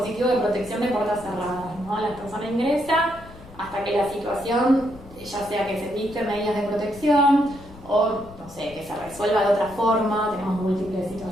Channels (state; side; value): noise; left; rumble, 19 dB below the sound